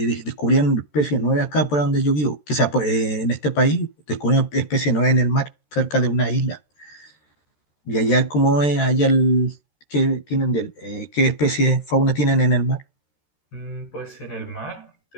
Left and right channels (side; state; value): right; late; 13 ms